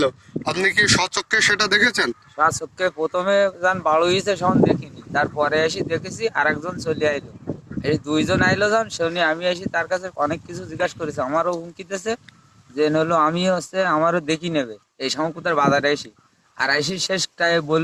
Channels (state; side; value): identical; both; correlation 1.00